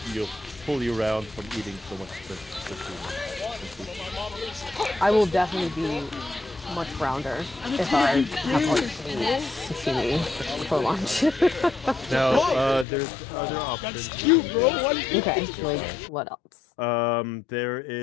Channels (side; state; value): right; drops out; at 12.9 s